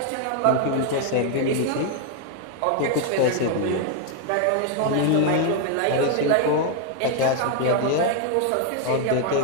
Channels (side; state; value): both; different; correlation 0.00